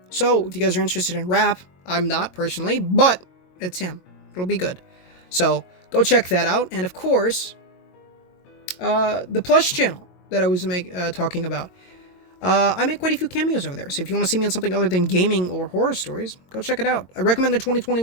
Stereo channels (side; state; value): right; late; 22 ms